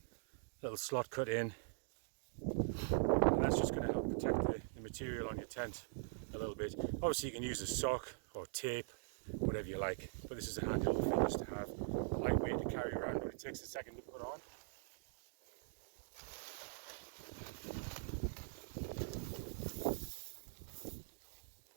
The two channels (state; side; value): silent; left; digital silence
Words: slot cut in, and that's just going to help protect the material on your tent a little bit. Obviously you can use a sock or tape, whatever you like, but this is a handy little thing just to have, lightweight to carry around, but it takes a second to put on.